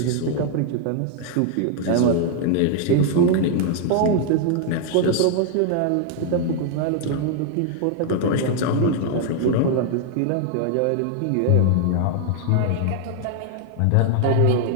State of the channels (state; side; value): different; both; correlation 0.00